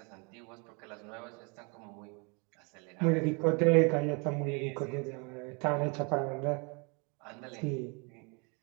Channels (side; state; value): left; quieter; 32.9 dB